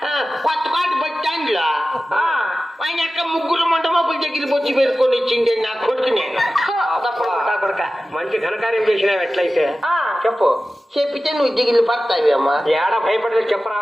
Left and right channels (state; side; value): normal; both; correlation 0.95